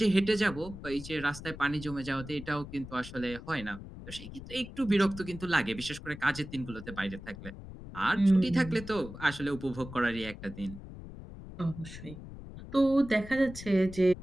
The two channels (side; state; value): left; noise; rumble, 13 dB below the sound